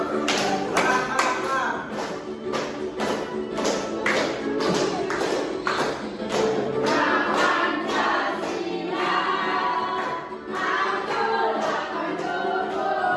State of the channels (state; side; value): identical; both; correlation 1.00